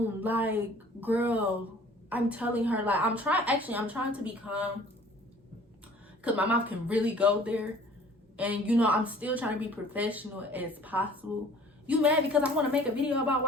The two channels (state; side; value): normal; both; correlation 0.51